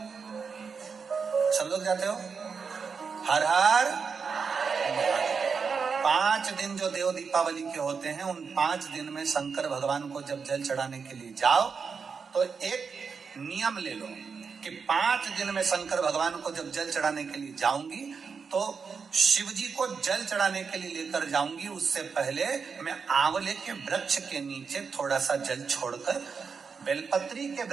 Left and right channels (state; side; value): quieter; left; 5.6 dB